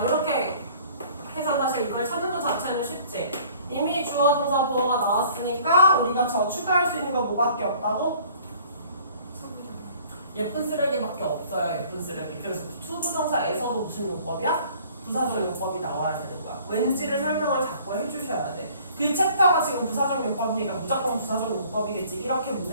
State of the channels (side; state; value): both; inverted; correlation -0.53